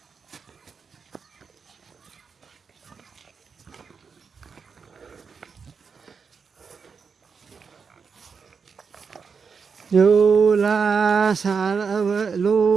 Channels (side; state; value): left; quieter; 5.7 dB